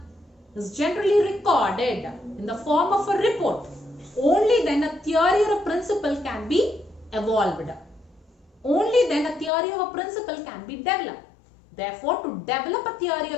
is generally recorded in the form of a report. Only then a theory or a principle can be evolved. Only then a theory or a principle can be developed. Therefore, to develop a theory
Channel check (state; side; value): drops out; right; at 9.5 s